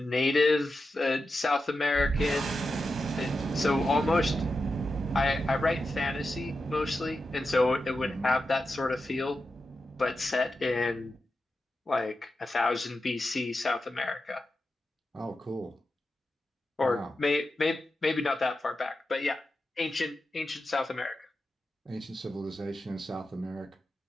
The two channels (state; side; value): normal; both; correlation 0.90